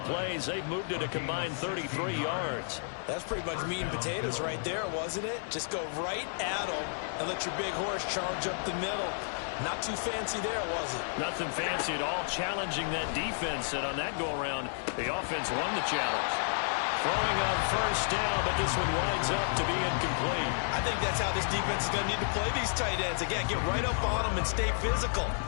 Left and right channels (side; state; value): right; silent; digital silence